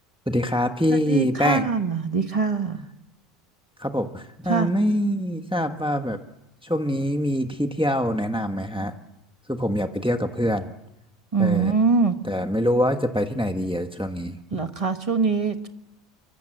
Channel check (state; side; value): normal; both; correlation 0.52